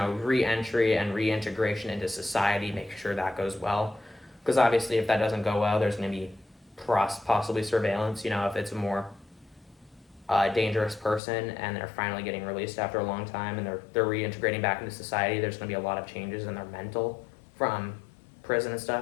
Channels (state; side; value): drops out; right; at 11.2 s